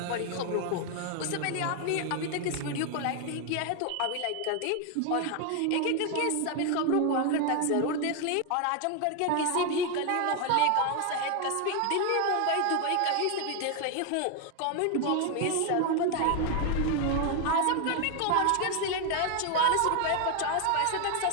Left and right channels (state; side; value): different; both; correlation 0.01